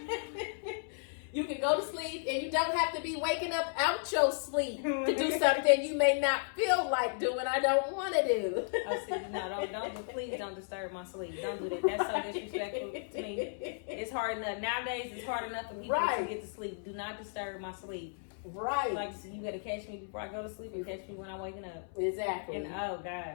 You can go to sleep and you don't have to be waking up out your sleep to do something you may not feel like doing. I don't want to do. Oh, see, no, please don't disturb my sleep. Don't do that. That's so disrespectful to me. It's hard enough. Nowadays, it's hard enough for people to get to sleep. Do not disturb my sleep. Right. Like, you got to catch me before I go to sleep and catch me when I'm waking up. Exactly. And, oh,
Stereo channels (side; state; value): right; silent; 55 dB below the other